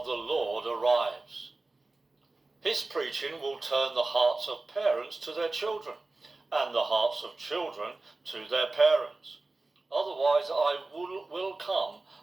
the Lord arrives." His preaching will turn the hearts of parents to their children, and the hearts of children to their parents. Otherwise I will come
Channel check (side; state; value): left; quieter; 3.2 dB